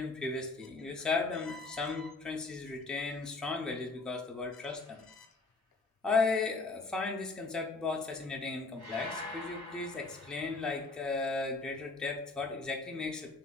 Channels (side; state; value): right; quieter; 3.6 dB